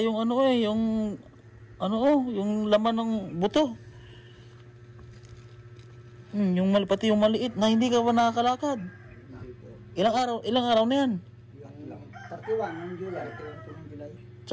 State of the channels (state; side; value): identical; both; correlation 1.00